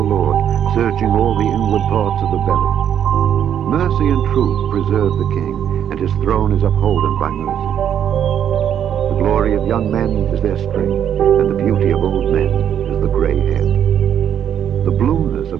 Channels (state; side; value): quieter; left; 9.3 dB